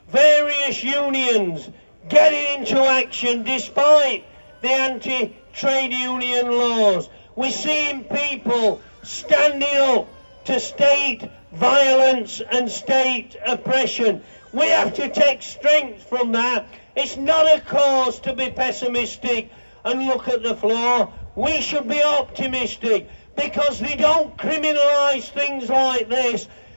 various unions getting into action despite the anti-trade union laws. We're seeing people standing up to state violence and state oppression. We have to take strength from that. It's not a cause to be pessimistic and look at the floor. We should be optimistic, because they don't criminalise things like this.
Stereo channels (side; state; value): both; inverted; correlation -1.00